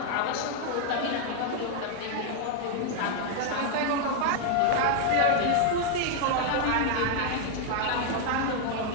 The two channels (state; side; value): different; both; correlation 0.00